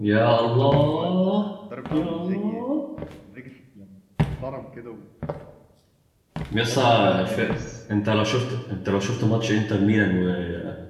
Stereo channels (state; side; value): identical; both; correlation 1.00